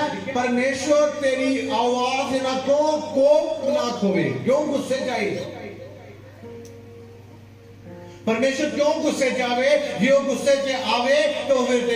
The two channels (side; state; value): both; identical; correlation 1.00